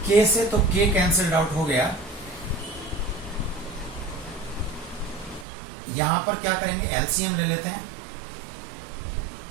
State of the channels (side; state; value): left; drops out; at 5.5 s